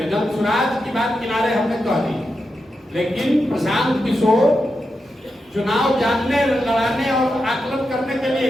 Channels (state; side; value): normal; both; correlation 0.88